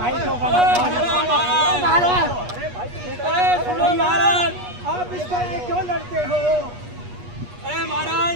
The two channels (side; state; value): left; late; 8.3 ms